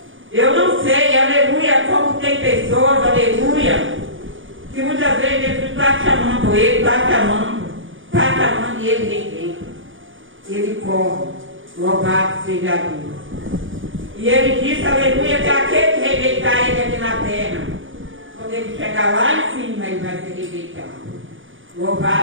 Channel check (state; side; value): late; left; 0.57 ms